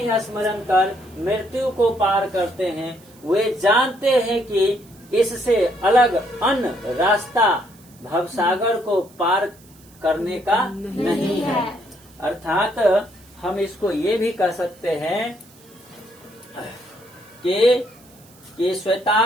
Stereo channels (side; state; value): right; noise; hiss, 26 dB below the sound